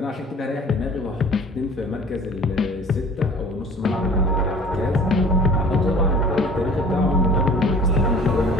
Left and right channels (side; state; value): both; normal; correlation 0.47